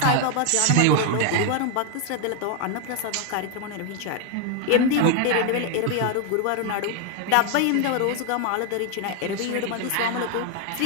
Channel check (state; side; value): different; both; correlation 0.01